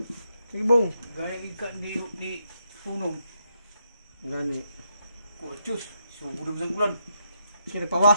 Sige bong. Gaya ikan di punong. Gani. Kurcus. Sugudom sang bulan. Sige,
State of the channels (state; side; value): inverted; both; correlation -0.79